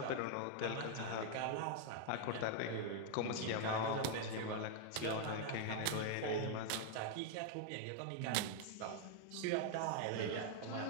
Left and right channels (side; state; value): both; different; correlation 0.00